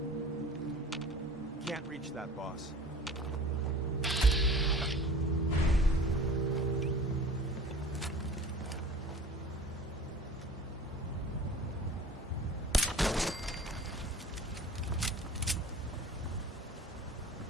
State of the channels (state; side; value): normal; both; correlation 0.42